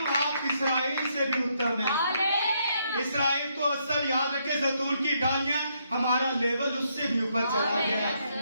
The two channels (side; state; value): both; inverted; correlation -0.75